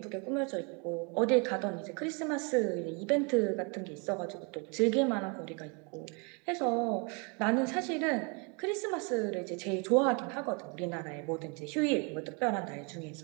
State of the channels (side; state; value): left; quieter; 33.8 dB